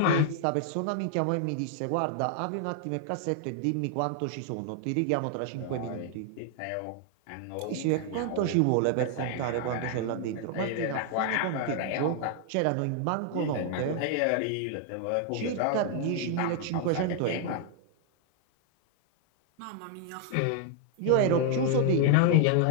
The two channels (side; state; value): both; different; correlation 0.00